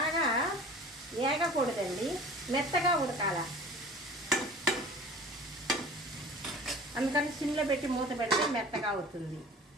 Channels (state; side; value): normal; both; correlation 0.43